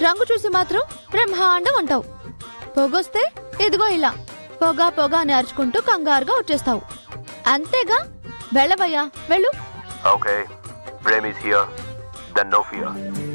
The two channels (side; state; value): both; inverted; correlation -1.00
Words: రంగు చూసి మాత్రం బ్రహ్మాండం అంటావు. పొగొస్తే ఇదిగో ఇలా పొగ పొగ అని అరుచుకుంటూ కంగారుగా వచ్చేస్తావు. అంతేగా, వెళ్ళవయ్యా, వెళ్ళు. Okay, Prem is here, then no fear.